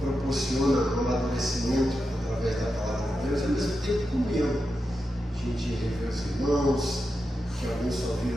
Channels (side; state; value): both; normal; correlation 0.88